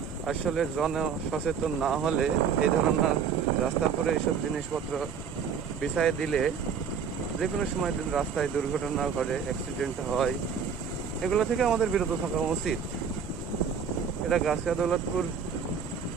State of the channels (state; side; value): quieter; left; 6.8 dB